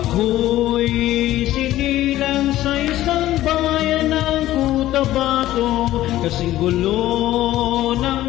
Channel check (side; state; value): right; quieter; 14.7 dB